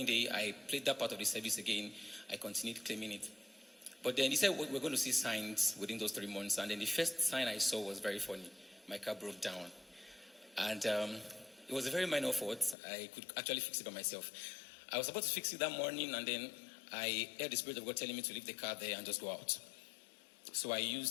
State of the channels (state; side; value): drops out; right; at 12.8 s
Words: day, I played that part of the service again. I continued claiming it. But then he said, we're going to see signs within those 3 months. And then the first sign I saw was very funny. My car broke down. And it was a very minor fault. I could actually fix it by myself. I was about to fix it that morning, and then I heard the Spirit of God telling me to leave the car there and just go out. So I